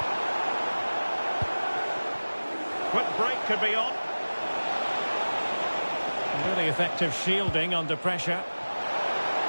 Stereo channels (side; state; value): both; inverted; correlation -1.00